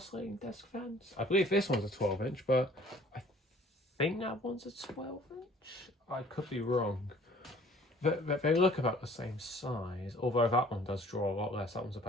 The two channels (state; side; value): normal; both; correlation 0.53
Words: desk fans. I believe this one's a 12-inch, but I think that one's a 12-inch. I could be wrong. They look about the same size, although that one does draw a lot less. That one's